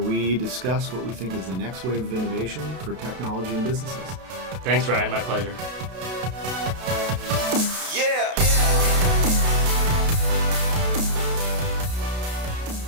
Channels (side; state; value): left; late; 32 ms